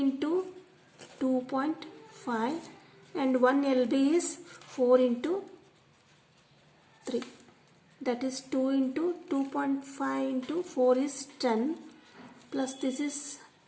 2.5 and 1 LB is 4 into 3. That is 2 into 2.5 into 4 is 10 plus this is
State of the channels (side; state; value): both; identical; correlation 1.00